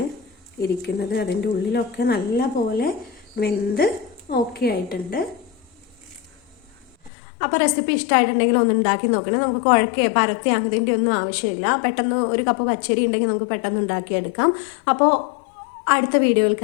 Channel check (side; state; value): right; drops out; at 7.1 s